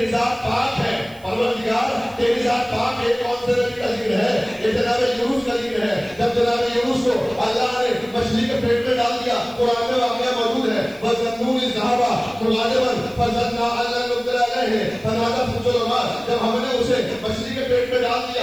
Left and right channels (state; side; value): noise; right; hiss, 26 dB below the sound